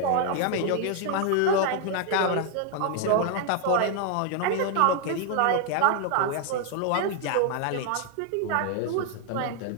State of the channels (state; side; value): different; both; correlation 0.00